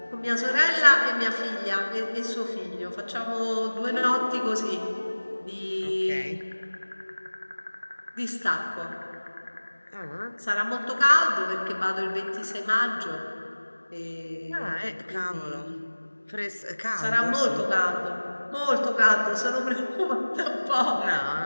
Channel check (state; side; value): inverted; both; correlation -1.00